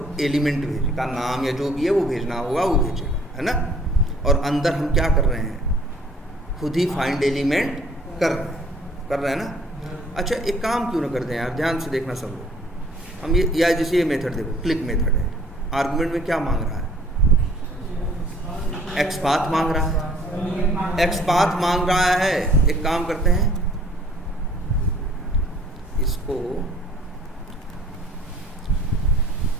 एलिमेंट भेजेगा, नाम या जो भी है वो भेजना होगा वो भेजेगा, है ना। और अंदर हम क्या कर रहे हैं, खुद ही फाइंड एलिमेंट कर रहे हैं ना। अच्छा एक काम क्यों ना कर दें यार, ध्यान से देखना सब लोग, हम ये या जैसे ये मेथड देखो, क्लिक मेथड है, आर्गुमेंट में क्या मांग रहा है, एक्सपाथ मांग रहा है, एक्सपाथ मांग रहा है। एक काम करते हैं, इसको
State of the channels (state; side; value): normal; both; correlation 0.56